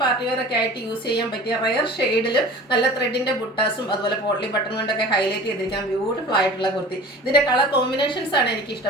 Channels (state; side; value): normal; both; correlation 0.41